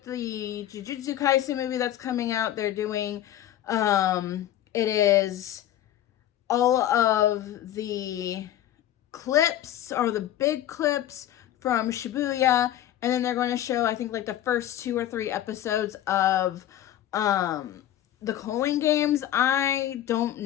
the Jujutsu Kaisen movie that's coming out, they're doing it is all of the clips, or the big clips from Shibuya, and then they're going to show, I think, like the first 2 or 3 episodes of the Culling Games. I don't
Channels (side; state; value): right; quieter; 12.3 dB